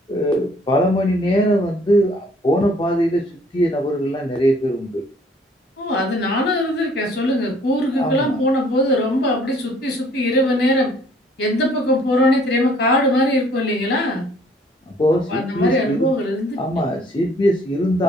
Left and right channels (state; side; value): normal; both; correlation 0.58